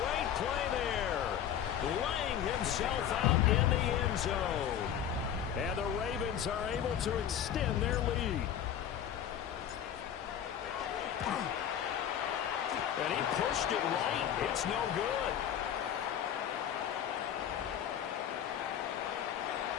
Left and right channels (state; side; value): quieter; right; 9.7 dB